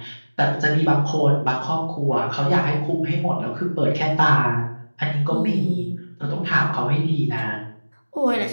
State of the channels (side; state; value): both; inverted; correlation -1.00